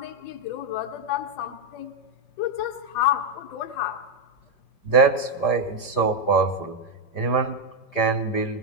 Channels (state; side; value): late; right; 5.0 ms